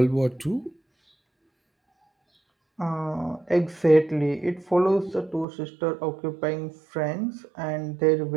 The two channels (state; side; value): drops out; left; at 5.5 s